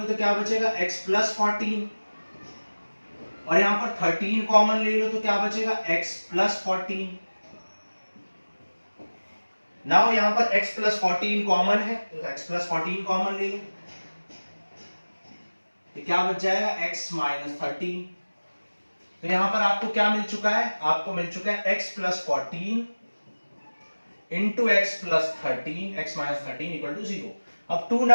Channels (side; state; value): both; inverted; correlation -1.00